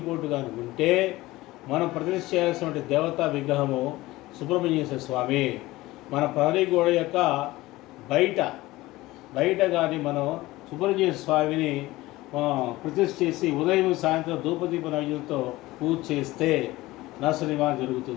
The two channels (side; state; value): right; quieter; 18.6 dB